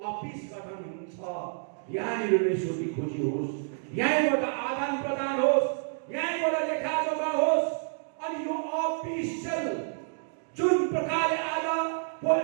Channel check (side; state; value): left; silent; digital silence